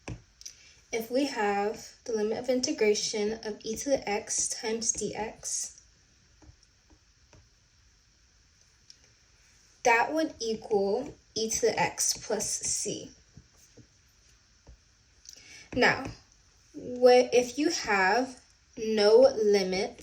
if we have the limit of integration of e to the x times dx, that would equal e to the x plus c. Now, if you have no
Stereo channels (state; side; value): identical; both; correlation 1.00